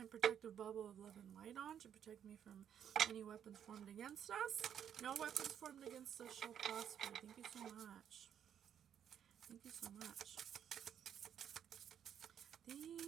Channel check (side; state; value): left; quieter; 9.1 dB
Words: protective bubble of love and light on to protect me from any weapons formed against us. No weapons formed against us shall prosper. Thank you so much. Thank you so much.